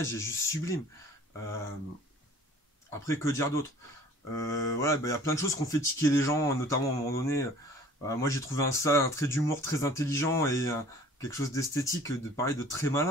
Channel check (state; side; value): normal; both; correlation 0.50